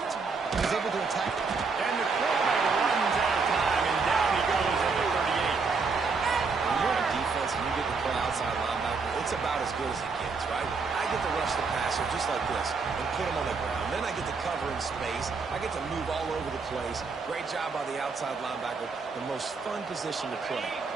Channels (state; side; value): quieter; left; 4.7 dB